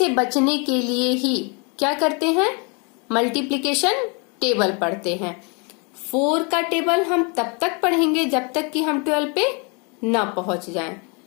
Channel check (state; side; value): quieter; right; 33.3 dB